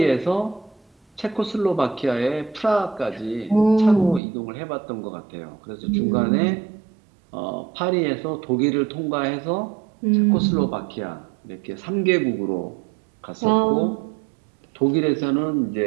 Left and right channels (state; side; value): drops out; left; at 4.2 s